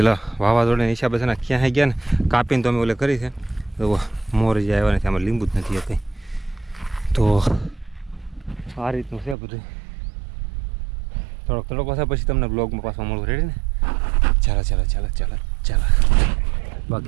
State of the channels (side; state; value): left; drops out; at 9.3 s